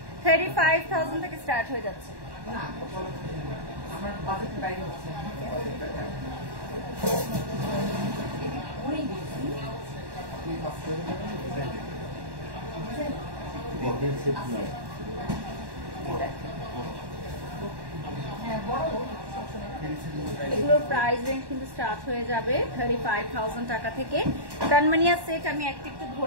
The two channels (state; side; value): late; left; 1.1 ms